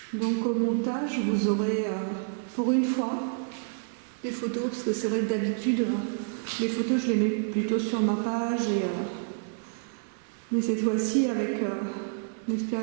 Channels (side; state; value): left; silent; 56 dB below the other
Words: Donc au montage, vous aurez pour une fois des photos, parce que c'est vrai que d'habitude, les photos je les mets plutôt sur ma page, mais cette fois-ci avec